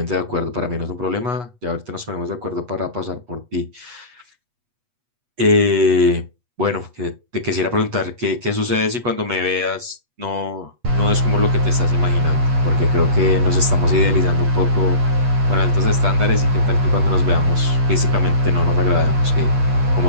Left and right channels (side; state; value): left; late; 8.3 ms